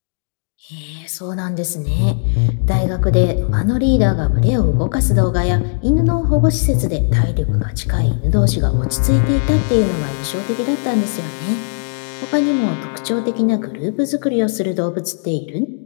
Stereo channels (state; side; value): silent; right; digital silence